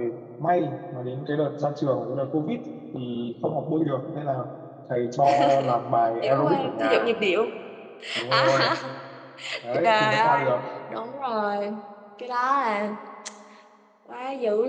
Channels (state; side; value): identical; both; correlation 1.00